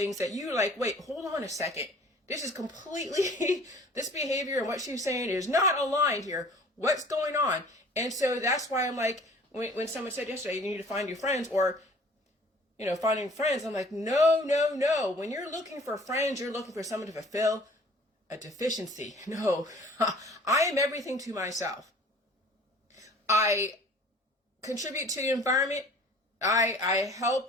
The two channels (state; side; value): normal; both; correlation 0.50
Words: that you're like, wait, hold on a second. This is completely, this behavior and what she's saying is not aligned here. What's going on? And so that's why I'm like, when someone said yesterday, you need to find your friends, or, finding friends, I'm like, no. When you're looking for friends, you're looking for someone to fulfill a deficiency. No, I am everything to myself. I contribute to the environment. I